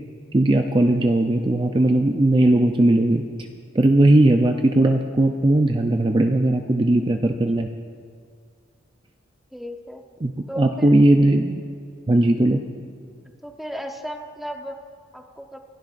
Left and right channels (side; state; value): both; normal; correlation 0.89